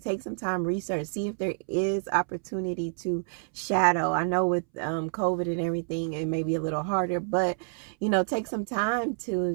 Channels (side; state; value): left; silent; 59 dB below the other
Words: take some time, research, see if there is opportunity to shadow. I know with COVID and everything, it may be a little harder, but take some time